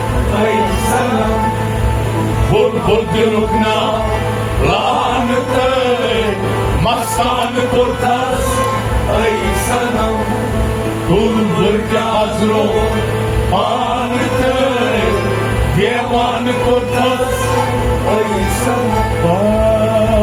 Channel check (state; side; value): identical; both; correlation 1.00